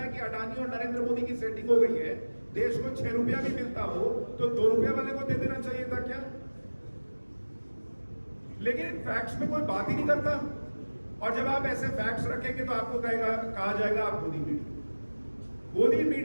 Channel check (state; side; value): inverted; both; correlation -1.00